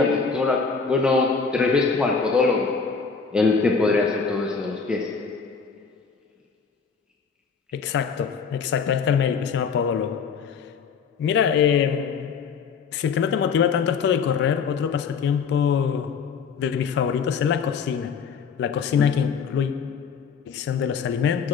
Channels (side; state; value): right; quieter; 5.7 dB